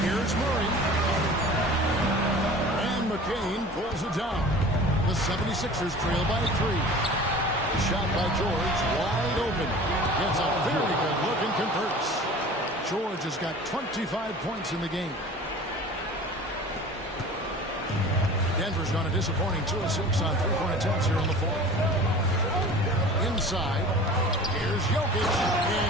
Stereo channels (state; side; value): normal; both; correlation 0.41